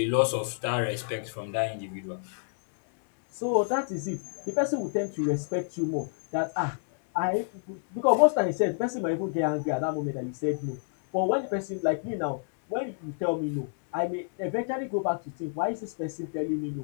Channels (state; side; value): silent; right; 59 dB below the other